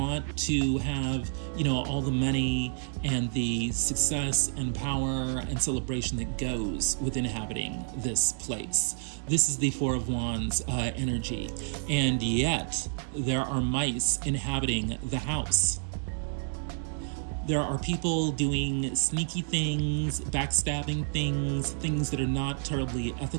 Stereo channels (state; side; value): silent; left; digital silence